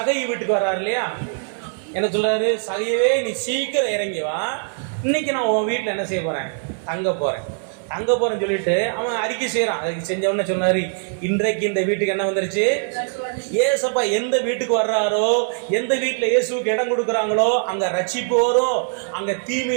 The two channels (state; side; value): silent; left; 61 dB below the other